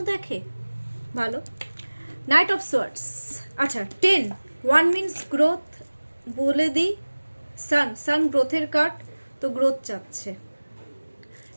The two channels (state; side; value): inverted; both; correlation -1.00